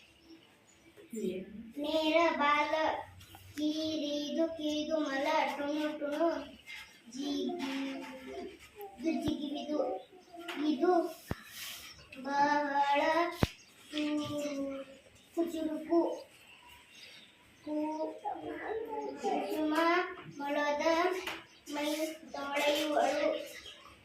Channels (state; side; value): identical; both; correlation 1.00